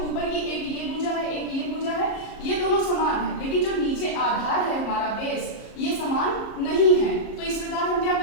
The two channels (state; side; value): late; right; 34 ms